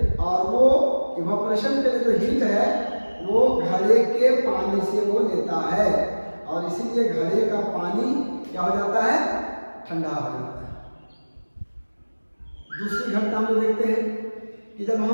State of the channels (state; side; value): inverted; both; correlation -1.00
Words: और वो इवेपोरेशन के लिए जो हीट है वो घड़े के पानी से वो लेता है, और इसीलिए घड़े का पानी क्या हो जाता है, ठंडा हो जाता है। दूसरी घटना हम लोग देखते हैं कि जब